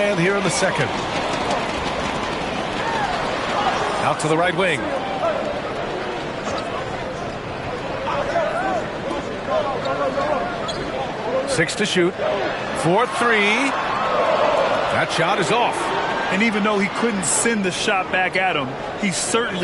here in the second. Out to the right wing. Six to shoot. 4-3. That shot is off. And even though he couldn't send the shot back at him, he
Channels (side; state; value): both; identical; correlation 1.00